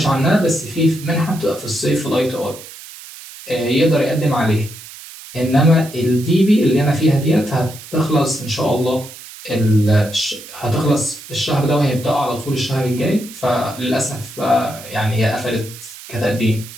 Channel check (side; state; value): right; noise; hiss, 16 dB below the sound